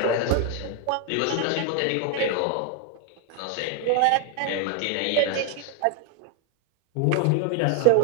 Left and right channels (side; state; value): both; different; correlation 0.01